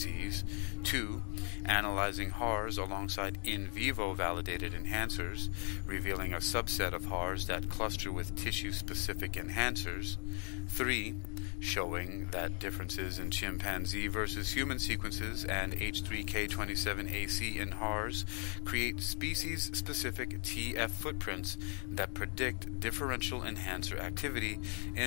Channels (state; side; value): quieter; right; 39.5 dB